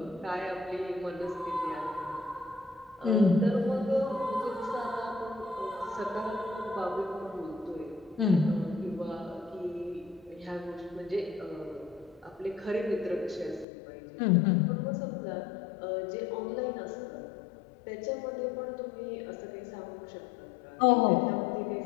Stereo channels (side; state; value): right; drops out; at 13.7 s